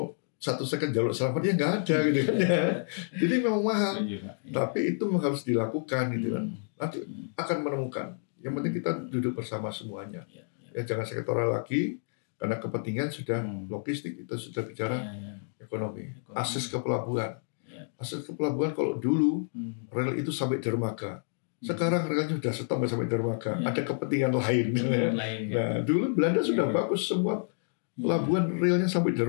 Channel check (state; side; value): silent; right; digital silence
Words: 1 second jalur selamat ya nggak ada gitu kan ya. Jadi memang mahal. Tapi itu harus dilakukan gitu kan. Nanti akan menemukan. Yang penting kita duduk bersama semuanya. Ya jangan sektoral lagi karena kepentingan sudah logistik, kita sudah bicara ekonomi. Akses ke pelabuhan. Akses ke pelabuhan kalau dulu rel itu sampai dermaga. Sekarang relnya sudah stop sampai dermaga. Ada kepentingan lain. Nah, dulu Belanda sudah bagus semua pelabuhan relnya sampai